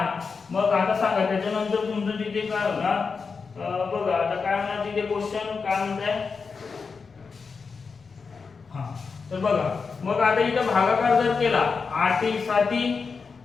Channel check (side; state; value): right; quieter; 5.1 dB